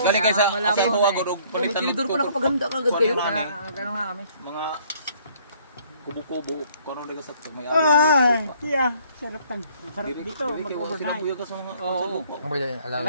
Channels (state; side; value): inverted; both; correlation -0.60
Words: Galing kayo sa tuwa ko og palitan ng tinidor pa nakapaganda kagad kayo. Gano'n nga kami. mga kubo-kubo. Kung ano lang sa may Ay, tiya. Sarap tan. Sarap dito, mag-overnight. Sinabuyo ka sa mga Oo.